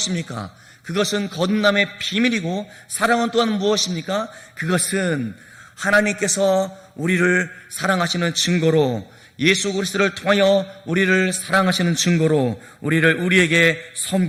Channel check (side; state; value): both; identical; correlation 1.00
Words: 그것은 거듭남의 비밀이고, 사랑은 또한 무엇입니까? 그것은 하나님께서 우리를 사랑하시는 증거로, 예수 그리스도를 통하여 우리를 사랑하시는 증거로 우리에게